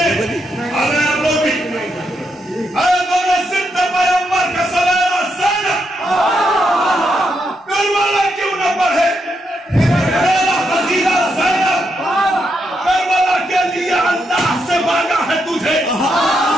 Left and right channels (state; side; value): normal; both; correlation 0.81